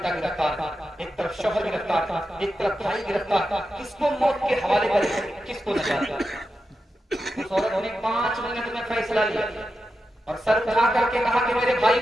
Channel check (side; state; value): both; normal; correlation 0.90